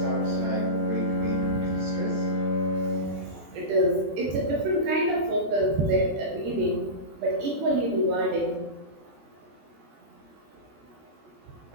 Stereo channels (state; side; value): late; left; 13 ms